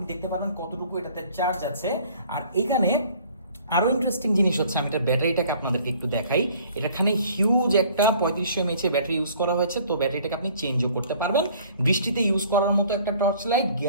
দেখতে পারবেন কতটুকু এটাতে চার্জ আছে। আর এখানে আরো ইন্টারেস্টিং জিনিস হচ্ছে, আমি এটার ব্যাটারিটাকে আপনাদেরকে একটু দেখাই। এখানে হিউজ একটা 3500 mAh এর ব্যাটারি ইউজ করা হয়েছে, তো ব্যাটারিটাকে আপনি চেঞ্জও করতে পারবেন। বৃষ্টিতে ইউজ করার মতো একটা torch light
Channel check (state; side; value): inverted; both; correlation -0.54